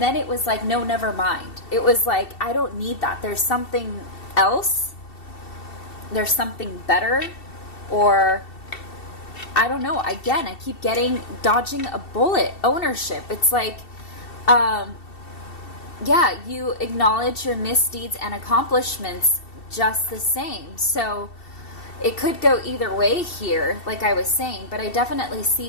it was like, no, never mind. It was like, I don't need that. There's something else. There's something better, or I don't know. Again, I keep getting dodging a bullet. Ownership. It's like, yeah, you acknowledge your misdeeds and accomplishments just the same. So it could go either way here, like I was saying, but I definitely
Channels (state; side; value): late; right; 2.7 ms